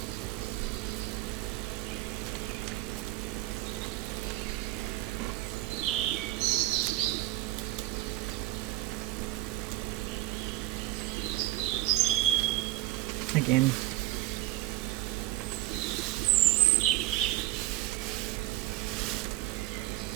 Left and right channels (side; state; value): left; quieter; 17.2 dB